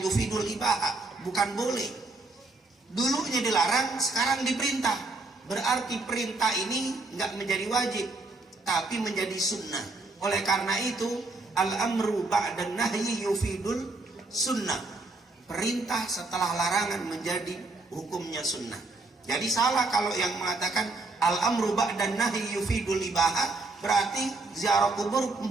yufidul ibahah, bukan boleh. Dulunya dilarang, sekarang diperintah. Berarti perintah ini nggak menjadi wajib, tapi menjadi sunnah. Oleh karena itu, al-amru ba'dan nahyi yufidul sunnah. Perintah setelah larangan menjadi hukumnya sunnah. Jadi salah kalau yang mengatakan al-amru ba'dan nahyi yufidul ibahah, berarti ziarah kubur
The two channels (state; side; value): quieter; left; 3.3 dB